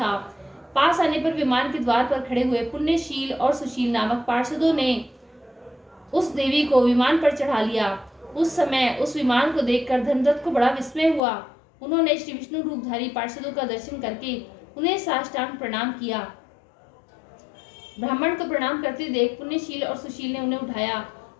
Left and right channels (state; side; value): drops out; right; at 11.2 s